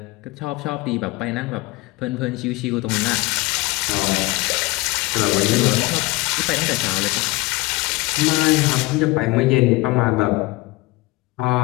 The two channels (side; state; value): right; quieter; 22.5 dB